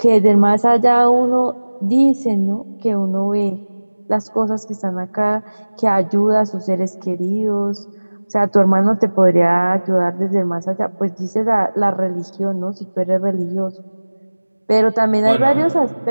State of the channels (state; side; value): inverted; both; correlation -1.00